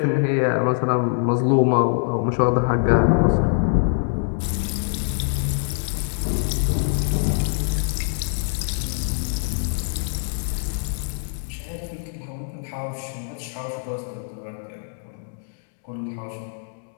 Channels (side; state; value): right; silent; digital silence